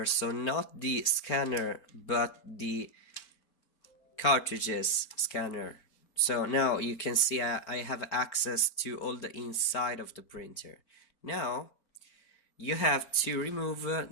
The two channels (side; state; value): right; late; 4.4 ms